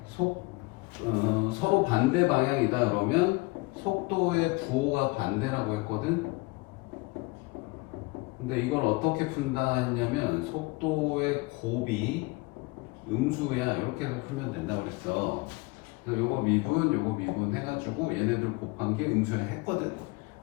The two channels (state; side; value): quieter; right; 25.3 dB